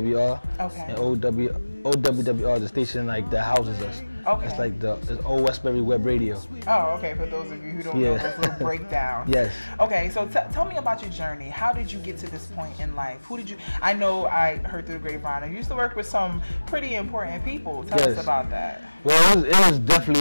Okay. And OWWR is the station like that houses us. Okay. It's like it's Old Westbury Web Radio. Oh, okay. For those of you who don't know this little breakdown. Yes. Okay, so tell me about your journey. How did you get to this point in life? Who did you? I know I heard through the grapevine. You used to work with some pretty important people. Tell us about that. Well, it was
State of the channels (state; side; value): inverted; both; correlation -1.00